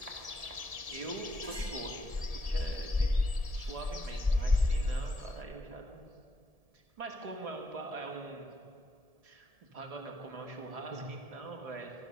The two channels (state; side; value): late; left; 1.7 ms